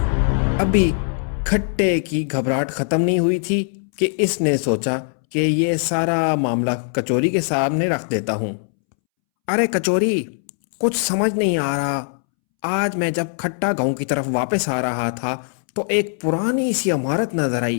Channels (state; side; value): silent; right; 65 dB below the other